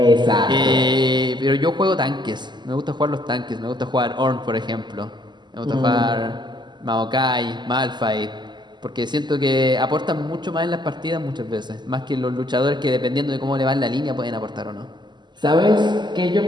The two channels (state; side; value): late; left; 0.21 ms